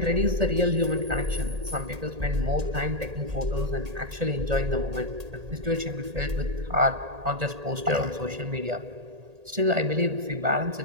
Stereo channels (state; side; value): late; left; 1.8 ms